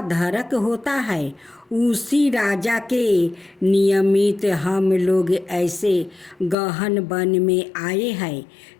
होता है। उसी राजा के नियमित हम लोग ऐसे गहन वन में आए हैं।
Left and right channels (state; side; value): drops out; right; at 6.6 s